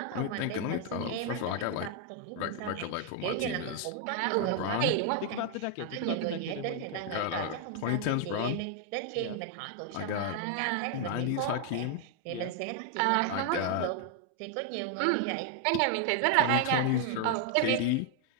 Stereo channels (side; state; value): both; different; correlation 0.00